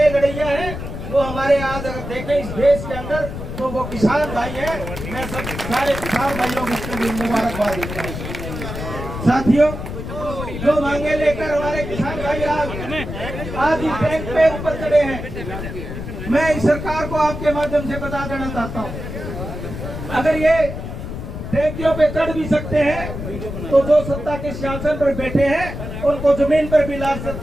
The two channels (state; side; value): noise; left; rumble, 7 dB below the sound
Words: लड़ैया हैं वो हमारे आज अगर देखें इस देश के अंदर तो वो किसान भाई हैं। मैं सब सारे किसान भाइयों को इसके लिए मुबारकबाद देता हूँ। साथियों, जो मांगे लेकर हमारे किसान भाई आज इस बैंक पे ऊपर चढ़े हैं, मैं इस सरकार को आपके माध्यम से बता देना चाहता हूँ, अगर ये टैंकियों पे चढ़ भी सकते हैं तो जो सत्ता के सिंहासन पर बैठे हैं उनको जमीन पर भी ला